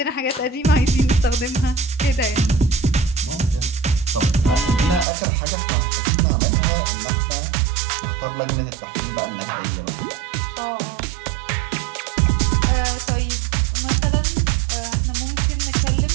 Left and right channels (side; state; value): left; drops out; at 5.1 s